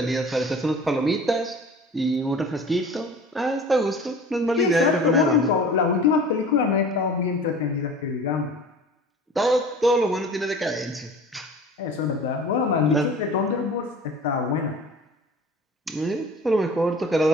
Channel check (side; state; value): both; normal; correlation 0.42